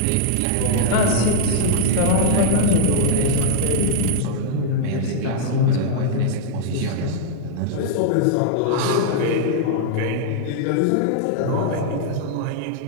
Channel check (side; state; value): both; different; correlation -0.01